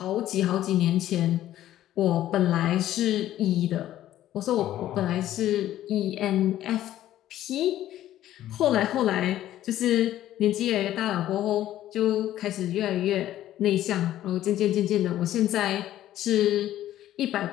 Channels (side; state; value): right; quieter; 13.1 dB